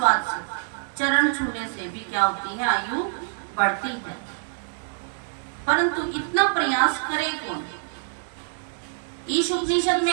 से, चरण छूने से भी क्या होती है, आयु बढ़ती है। परंतु इतना प्रयास करे कौन। ईश उपनिषद में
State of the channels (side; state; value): left; silent; digital silence